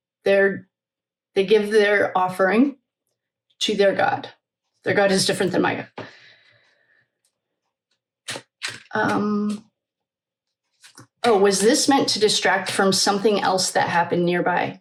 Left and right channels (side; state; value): both; identical; correlation 1.00